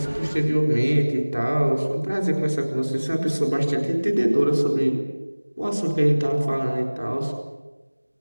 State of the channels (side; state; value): both; inverted; correlation -1.00